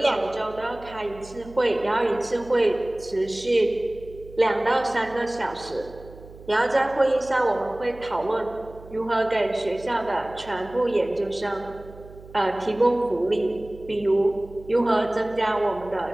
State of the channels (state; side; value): noise; right; hum, 19 dB below the sound